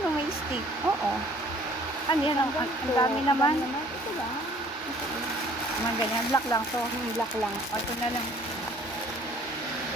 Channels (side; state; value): both; normal; correlation 0.55